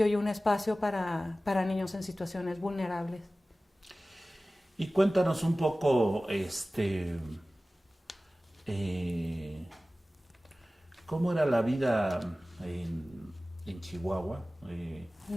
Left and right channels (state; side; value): normal; both; correlation 0.97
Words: y un espacio para niños en situaciones vulnerables. Y cuéntanos un poco, ¿cómo era la vida en Chihuahua?